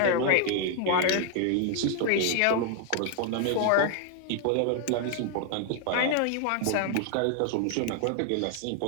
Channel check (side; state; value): both; different; correlation 0.00